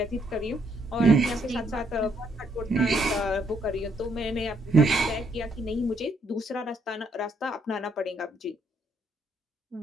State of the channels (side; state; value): both; normal; correlation 0.72